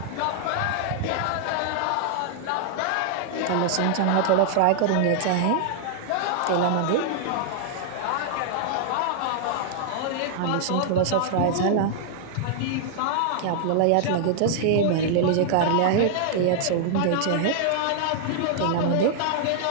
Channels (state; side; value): different; both; correlation -0.01